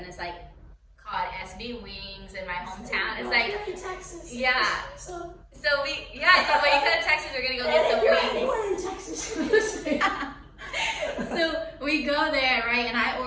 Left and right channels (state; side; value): identical; both; correlation 1.00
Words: it's like called SB Wings in my hometown. It's like, in Texas. yeah. So We you could have texted. We're gonna go get some if you're wings. anywhere in Texas, So we go there, right? And I